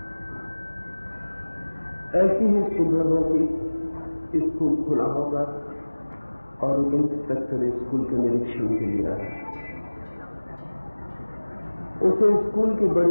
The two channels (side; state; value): both; inverted; correlation -1.00